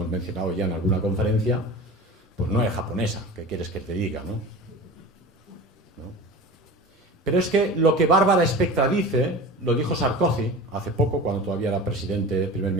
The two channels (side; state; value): both; normal; correlation 0.34